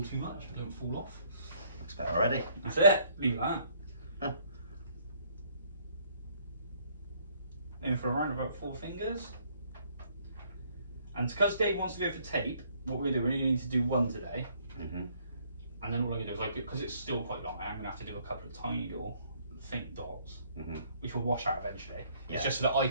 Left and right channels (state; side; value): inverted; both; correlation -0.65